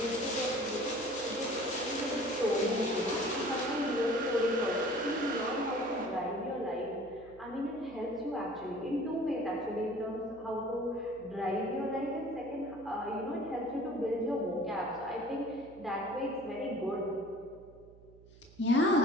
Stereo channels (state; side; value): noise; right; hum, 23 dB below the sound